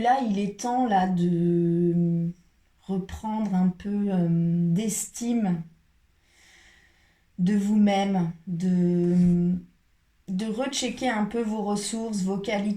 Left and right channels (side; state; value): both; identical; correlation 1.00